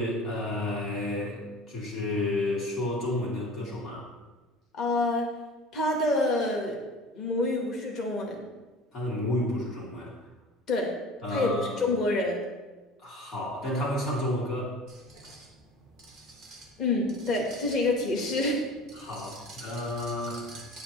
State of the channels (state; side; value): normal; both; correlation 0.41